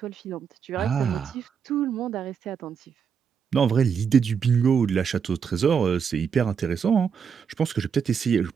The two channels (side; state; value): left; quieter; 6.8 dB